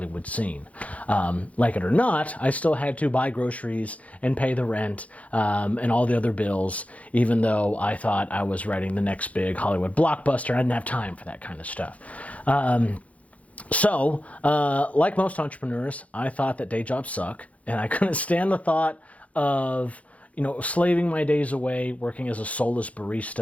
scene? Like it or not, I still had to buy groceries and pay the rent and all the other bills, even though I thought I was writing the next big Hollywood blockbuster. I didn't have time for that kind of stuff. So, like most entrepreneurs, I thought that day jobs suck, and I couldn't stand the thought of slaving my days away working as a soulless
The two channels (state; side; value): late; right; 0.066 ms